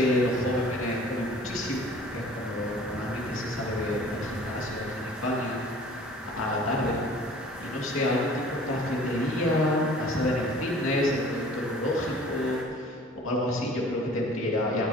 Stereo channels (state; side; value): normal; both; correlation 0.49